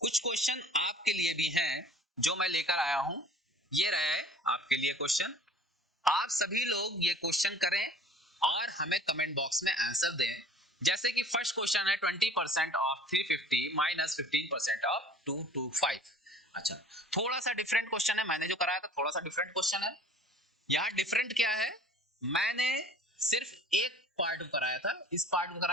कुछ क्वेश्चन आपके लिए भी हैं जो मैं लेकर आया हूं, ये रहे आपके लिए क्वेश्चन। आप सभी लोग ये क्वेश्चन करें और हमें कमेंट बॉक्स में आंसर दें। जैसे कि फर्स्ट क्वेश्चन है 20% ऑफ 350 माइनस 15% ऑफ 225। अच्छा, थोड़ा सा डिफरेंट क्वेश्चन है, मैंने जो कराया था थोड़ा सा डिफरेंट क्वेश्चन है। यहाँ डिफरेंट क्या है, मैंने सिर्फ एक पार्ट कराया था, इस पार्ट को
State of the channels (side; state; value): both; normal; correlation 0.49